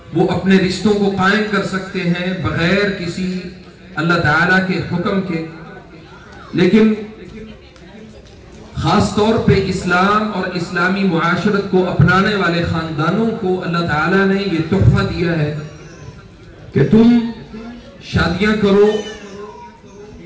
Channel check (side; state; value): both; identical; correlation 1.00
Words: وہ اپنے رشتوں کو قائم کر سکتے ہیں بغیر کسی اللہ تعالیٰ کے حکم کے. لیکن خاص طور پہ اسلام اور اسلامی معاشرت کو اپنانے والے خاندانوں کو اللہ تعالیٰ نے یہ تحفہ دیا ہے کہ تم شادیاں کرو،